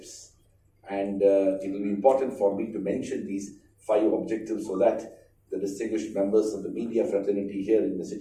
And it will be important for me to mention these 5 objectives so that the distinguished members of the media fraternity here in the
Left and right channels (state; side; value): identical; both; correlation 1.00